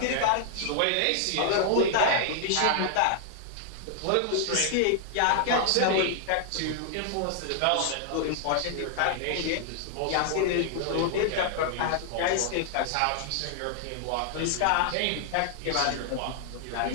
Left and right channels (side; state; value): both; different; correlation 0.00